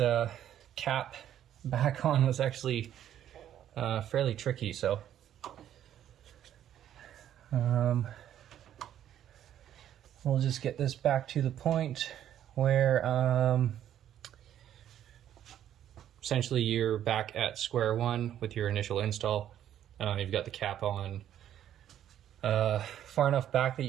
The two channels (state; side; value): quieter; left; 10.9 dB